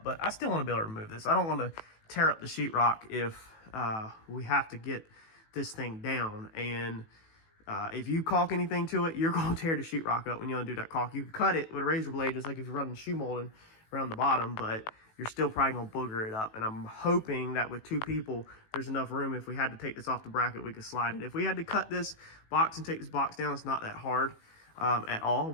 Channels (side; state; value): right; late; 18 ms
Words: but I still want to be able to remove this. I don't want to tear up the sheetrock if we have to get this thing down. And if you caulk anything to it, you're going to tear the sheetrock up when you undo that caulk. You can cut it with a razor blade just like if you're running shoe molding around the bottom, but you're still probably gonna booger it up. And I'm hoping that with two people, there's enough room. If we had to take this off the bracket, we could slide it. If we had to cut this box and take this box down, it's not that hard at all,